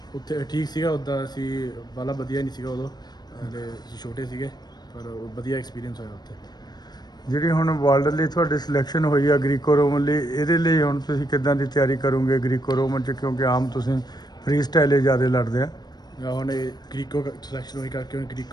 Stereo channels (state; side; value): late; right; 0.20 ms